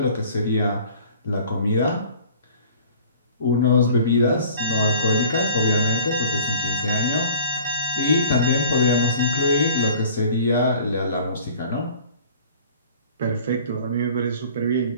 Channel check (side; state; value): both; inverted; correlation -0.49